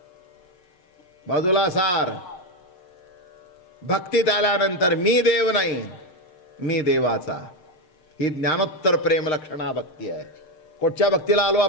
बाजूला सार. भक्तीत आल्यानंतर मी देव नाही, मी देवाचा. ही ज्ञानोत्तर प्रेम लक्षणा भक्ती आहे. कुठच्या भक्तीला आलो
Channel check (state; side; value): late; right; 6.6 ms